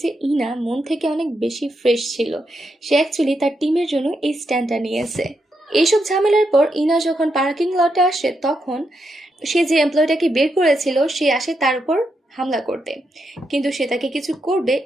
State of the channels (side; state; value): both; normal; correlation 0.82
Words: যে ইনা মন থেকে অনেক বেশি ফ্রেশ ছিল, সে অ্যাকচুয়ালি তার টিমের জন্য এই স্ট্যান্ডটা নিয়েছে। এইসব ঝামেলার পর ইনা যখন পার্কিং লটে আসে তখন সে যে এমপ্লয়টাকে বের করেছিল সে আসে তার উপর হামলা করতে, কিন্তু সে তাকে কিছু করবে